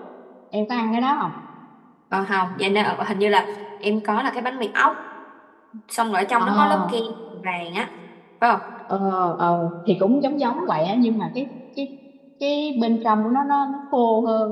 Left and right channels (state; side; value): identical; both; correlation 1.00